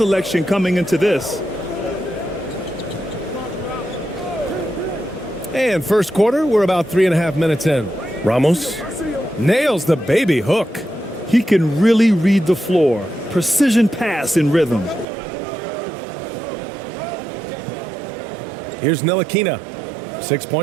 coming into this. And first quarter, we're about 3.5 minutes in. Ramos nails the baby hook. He can really read the floor. Precision pass in rhythm. Here's Ntilikina. 6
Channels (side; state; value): left; drops out; at 15.1 s